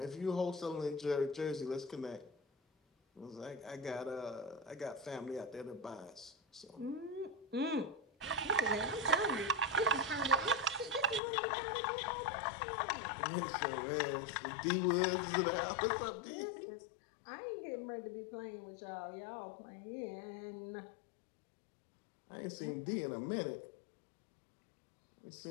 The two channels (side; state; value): right; drops out; at 11.2 s